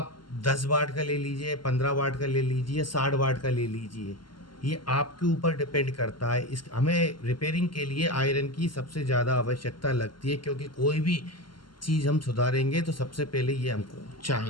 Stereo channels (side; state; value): right; late; 0.72 ms